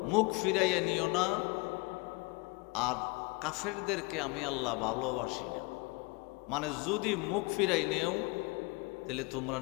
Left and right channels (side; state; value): right; quieter; 26.8 dB